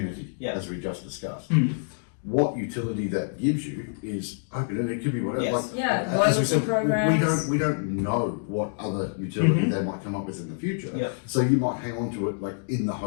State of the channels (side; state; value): right; silent; digital silence